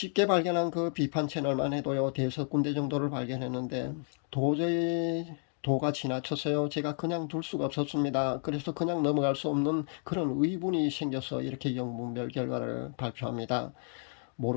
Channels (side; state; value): right; silent; 57 dB below the other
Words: 발견한 그 비판 채널만 해도요, 대여섯 군데 정도를 발견했는데, 도저히 도가 지나쳐서요, 제가 그냥 둘 수가 없었습니다. 그래서 그냥 넘어갈 수 없는 그런 의문이 생겨서 이렇게 영문별 결과를 발표합니다.